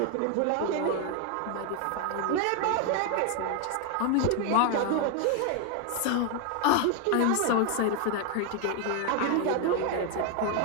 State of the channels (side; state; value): both; different; correlation 0.01